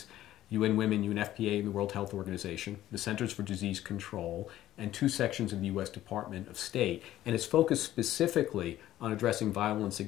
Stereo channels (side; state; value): right; quieter; 13.7 dB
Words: UN Women, UNFPA, and the World Health Organization, the Centers for Disease Control, and 2 sections of the U.S. Department of State. And it's focused specifically on addressing violence